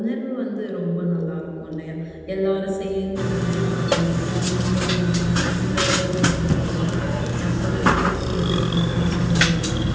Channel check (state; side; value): identical; both; correlation 1.00